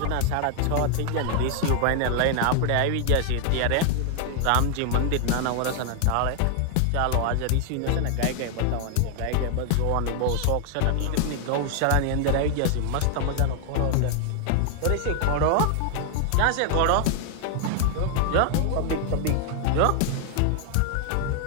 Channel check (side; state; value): both; different; correlation 0.00